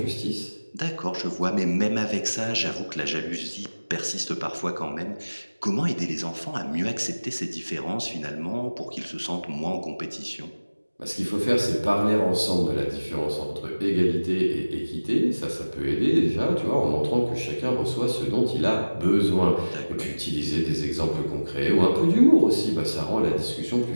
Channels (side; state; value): both; inverted; correlation -1.00